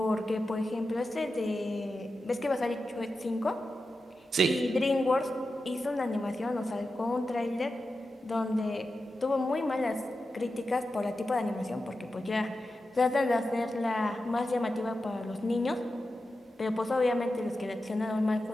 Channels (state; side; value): normal; both; correlation 0.91